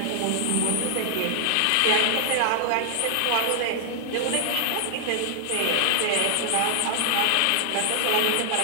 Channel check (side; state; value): both; different; correlation -0.01